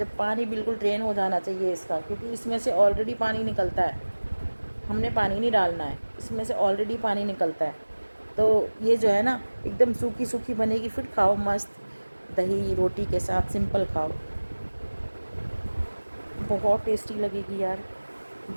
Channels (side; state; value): both; inverted; correlation -1.00